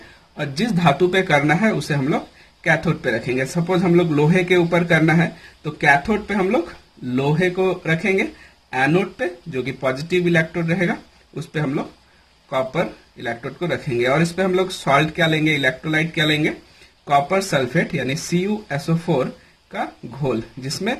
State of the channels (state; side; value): identical; both; correlation 1.00